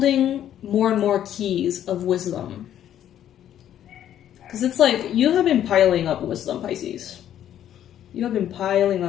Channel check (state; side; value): quieter; right; 10.8 dB